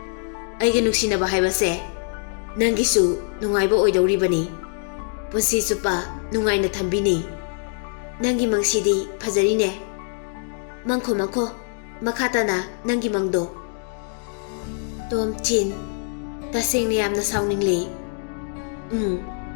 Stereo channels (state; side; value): silent; right; 60 dB below the other